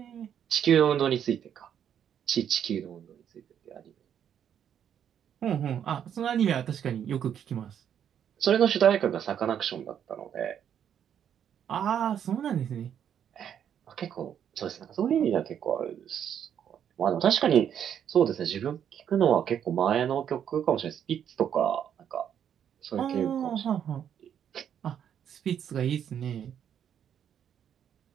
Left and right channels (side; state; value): left; quieter; 9.0 dB